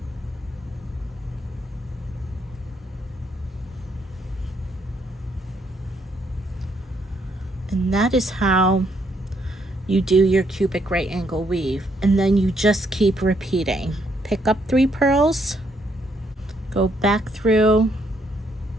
And that is how you do your cubic right angle weave. And then you just keep repeating. Pick up 3 pearls, go back through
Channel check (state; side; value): normal; both; correlation 0.72